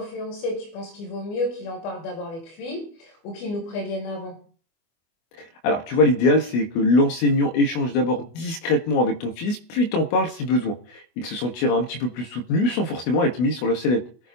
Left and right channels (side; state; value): right; late; 24 ms